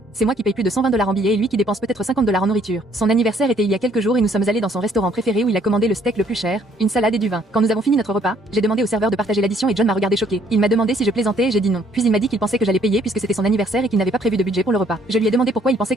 c'est moi qui paye plus de 120 $ en billets et lui qui dépense peut-être 50 $ en nourriture. Son anniversaire était il y a quelques jours et nous sommes allés dans son restaurant préféré où il a commandé le steak le plus cher, une salade et du vin. Quand nous avons fini notre repas, j'ai demandé au serveur de partager l'addition et John m'a regardé choqué. Il m'a demandé si je plaisantais et j'ai dit non. Puis il m'a dit qu'il pensait que j'allais payer puisque c'était son anniversaire et qu'il n'avait pas prévu de budget pour le repas. Je lui ai demandé pourquoi il pensait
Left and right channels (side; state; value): both; normal; correlation 0.64